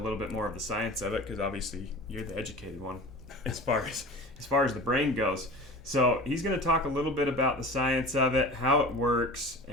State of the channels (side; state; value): both; normal; correlation 0.37